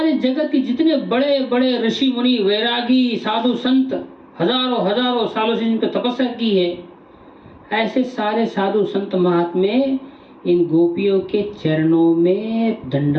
जगत के जितने बड़े बड़े ऋषि मुनि, वैरागी, साधु संत, हजारों हजारों सालों से जिनकी तपस्या की है, ऐसे सारे साधु संत महात्मे इन गोपियों के चरणों में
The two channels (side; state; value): both; identical; correlation 1.00